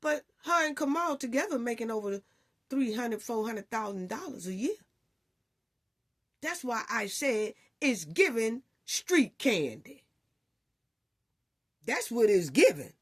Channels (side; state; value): both; identical; correlation 1.00